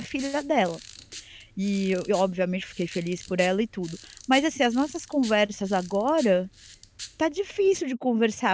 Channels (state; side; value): identical; both; correlation 1.00